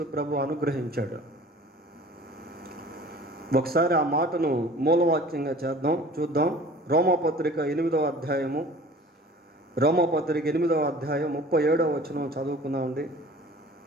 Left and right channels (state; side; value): normal; both; correlation 0.45